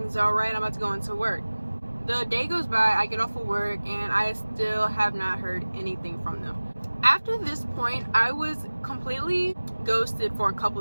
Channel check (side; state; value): both; inverted; correlation -1.00